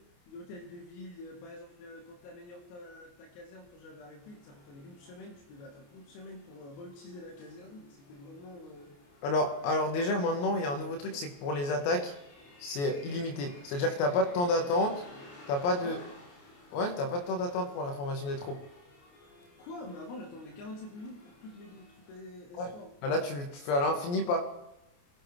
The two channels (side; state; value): right; late; 28 ms